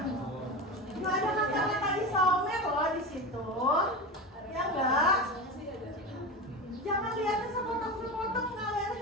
Nggak ada kata-kata isomer loh di situ, ya enggak? Jangan lihatnya sepotong-sepotong, nggak lihatnya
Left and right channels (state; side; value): normal; both; correlation 0.24